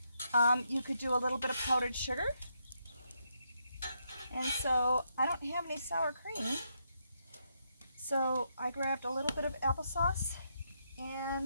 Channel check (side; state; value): both; inverted; correlation -0.79